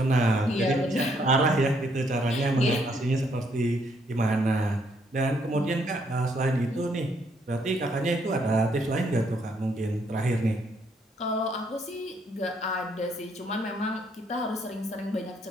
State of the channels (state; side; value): normal; both; correlation 0.71